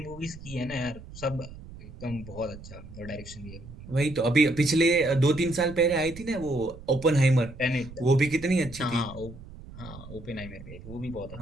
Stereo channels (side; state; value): right; noise; rumble, 15 dB below the sound